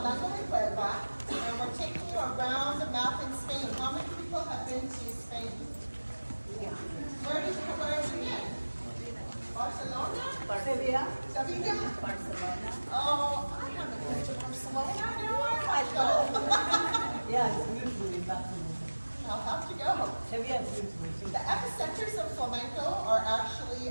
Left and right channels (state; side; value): inverted; both; correlation -1.00